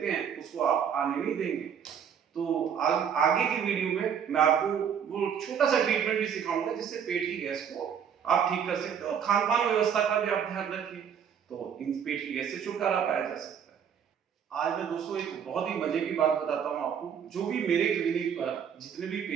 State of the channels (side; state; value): left; quieter; 7.9 dB